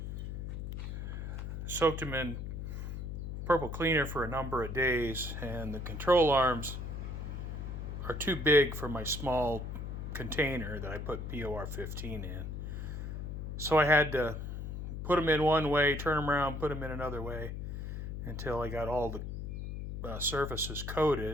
Soaked them in purple cleaner for a number of days, and the control arms are too big for my small container that I put POR 15 in. So I had to put them in one way, turn them around, put them in another way until I got all the surfaces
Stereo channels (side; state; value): left; noise; hum, 5 dB below the sound